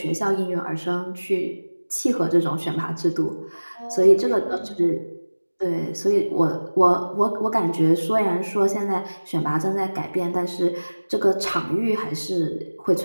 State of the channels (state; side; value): inverted; both; correlation -1.00